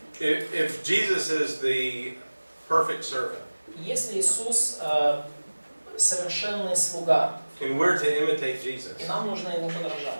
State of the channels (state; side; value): inverted; both; correlation -1.00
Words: If Jesus is the perfect servant, Если Иисус совершенный слуга, and we're to imitate Jesus, и нам нужно ему